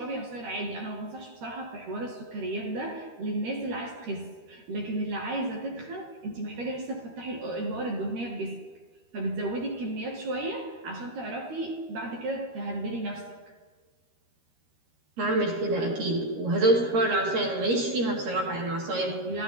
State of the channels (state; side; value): late; left; 13 ms